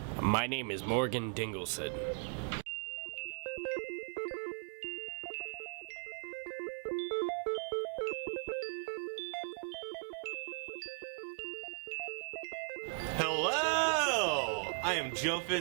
My name is Morgan Dingleson. Hello! I am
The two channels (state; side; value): silent; left; 52 dB below the other